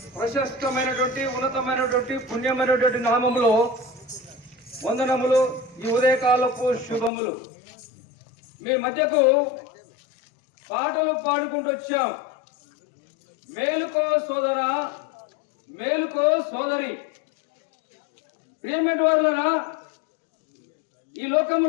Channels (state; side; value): drops out; right; at 7.1 s